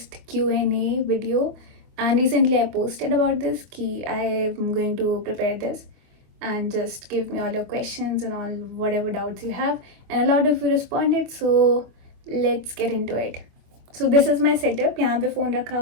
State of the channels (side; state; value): left; late; 24 ms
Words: Q&A video and recently I posted about this कि I am going to prepare this and just give me all your questions and all whatever doubts you have, and a lot of you responded, so let's get into it. So this is my setup. यहाँ पे phone रखा